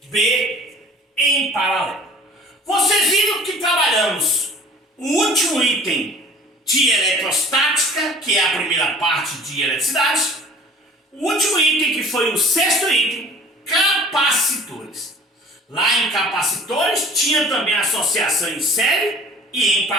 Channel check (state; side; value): normal; both; correlation 0.47